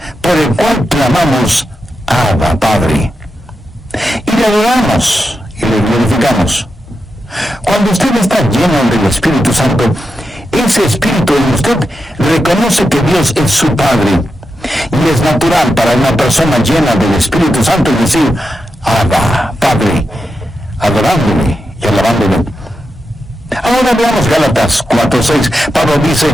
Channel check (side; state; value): both; normal; correlation 0.88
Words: Por el cual clamamos, Abba, Padre. Y le adoramos y le glorificamos. Cuando usted está lleno del Espíritu Santo, ese Espíritu en usted reconoce que Dios es su Padre. Y es natural para una persona llena del Espíritu Santo decir, Abba, Padre, adorándole y alabándole. Ahora veamos Gálatas 4:6. Pablo